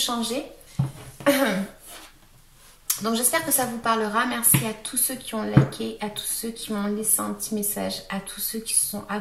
Donc j'espère que ça vous parlera. Merci à tous ceux qui ont liké, à tous ceux qui m'ont laissé un petit message, à tous ceux qui se sont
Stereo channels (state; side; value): identical; both; correlation 1.00